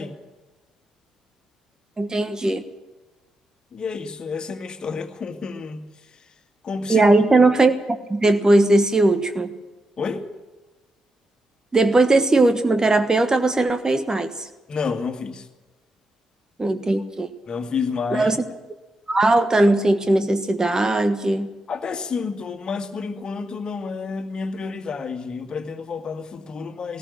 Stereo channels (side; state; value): both; normal; correlation 0.86